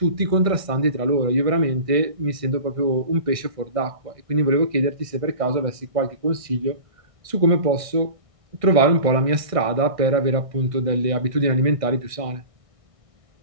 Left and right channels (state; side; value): late; left; 1.6 ms